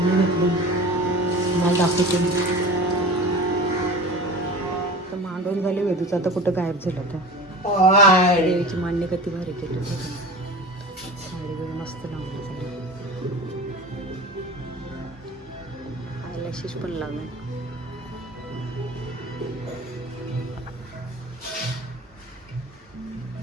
घेतली. मला दाखवते. तर मांडून झाली वेदूचं. आता कुठं गायब झालं तर. देवीची मांडणी किती भारी केली. साडी वगैरे मस्त लावली. आयलॅशेस पण लावले.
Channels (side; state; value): both; normal; correlation 0.36